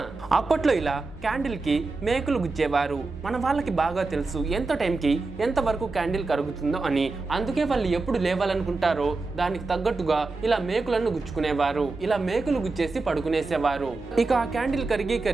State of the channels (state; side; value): quieter; left; 3.7 dB